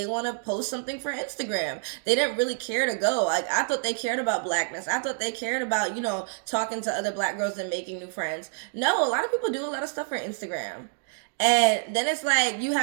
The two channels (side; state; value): left; silent; digital silence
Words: want to post something for Instagram. They didn't really care to go. Like, I thought they cared about blackness. I thought they cared about, talking to other black girls and making new friends. No, a lot of people do a lot of stuff for Instagram. And then it's like you